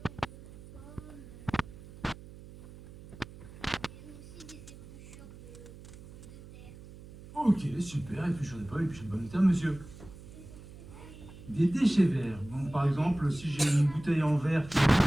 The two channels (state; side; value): noise; right; hum, 17 dB below the sound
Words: Ok, super, épluchure de pommes, épluchure de pommes de terre, monsieur. Des déchets verts. Bon, par exemple, si j'ai une bouteille en verre, je